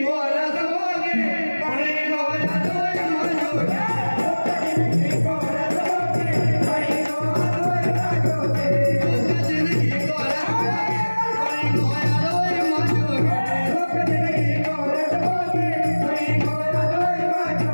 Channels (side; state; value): both; inverted; correlation -1.00